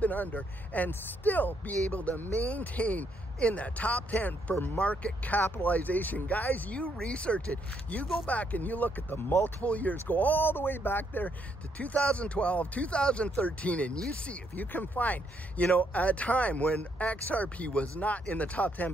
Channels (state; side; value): normal; both; correlation 0.74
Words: been under and still be able to maintain in the top 10 for market capitalization. Guys, you research it. You go back and you look at the multiple years, go all the way back there to 2012, 2013, and you see if you can find, you know, a time when XRP was not in the top 10.